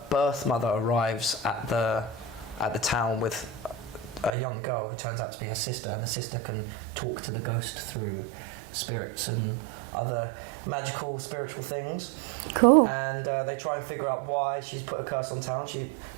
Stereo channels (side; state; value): left; drops out; at 4.3 s